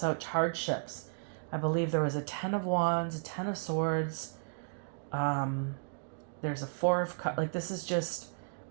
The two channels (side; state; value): left; silent; digital silence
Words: hardships. I believe there was a Ten of Wands, a Ten of Swords. There's a Four of Cups. Like this is just